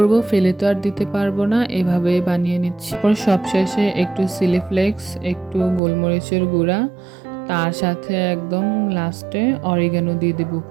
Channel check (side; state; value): left; drops out; at 5.8 s